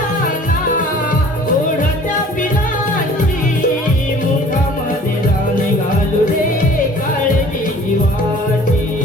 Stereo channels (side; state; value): both; normal; correlation 0.49